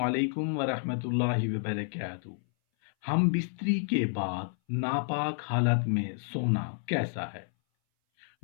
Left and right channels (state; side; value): silent; right; 58 dB below the other